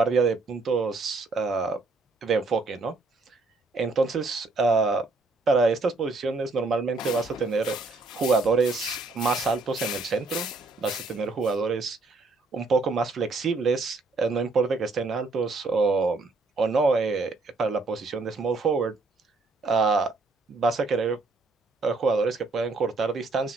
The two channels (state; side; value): quieter; left; 3.5 dB